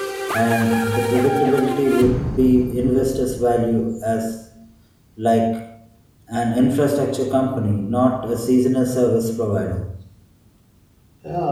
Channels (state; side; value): identical; both; correlation 1.00